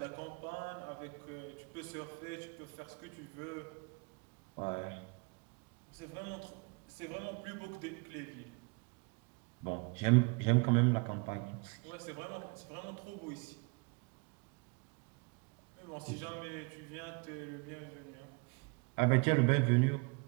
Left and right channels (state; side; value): quieter; left; 30.4 dB